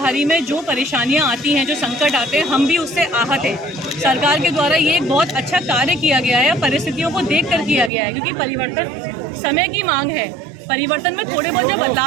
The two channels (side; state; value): left; drops out; at 7.9 s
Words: में जो परेशानियां आती हैं, जो संकट आते हैं, हम भी उससे आहत हैं। सरकार के द्वारा ये एक बहुत अच्छा कार्य किया गया है, परिस्थितियों को देखकर किया गया है, क्योंकि परिवर्तन समय की मांग है। परिवर्तन में थोड़े बहुत जब